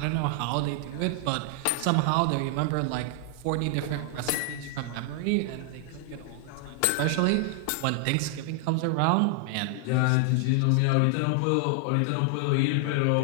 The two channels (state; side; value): different; both; correlation 0.00